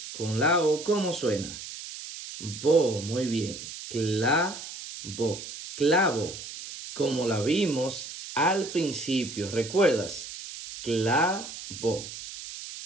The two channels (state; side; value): noise; right; hiss, 11 dB below the sound